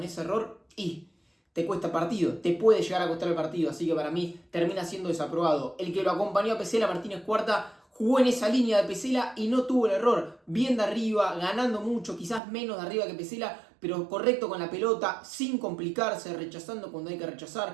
ese error te cuesta partido, te puede llegar a costar el partido, así que para mí termina siendo desaprobado. El que lo acompañó a Pesela, Martínez Cuarta, jugó en esa línea de Pesela y no tuvo el error. Bien de arriba, ganando mucho, quizás menos de arriba que Pesela, pero correcto con la pelota, sin complicarse, rechazando cuando hay que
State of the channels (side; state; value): left; drops out; at 12.4 s